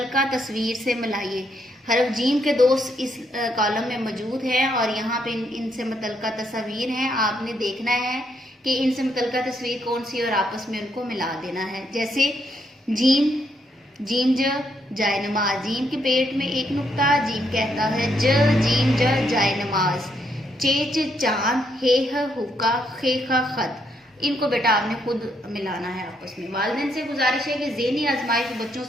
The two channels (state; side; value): normal; both; correlation 0.76